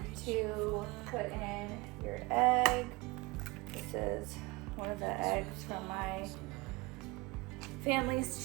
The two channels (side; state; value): left; quieter; 24.0 dB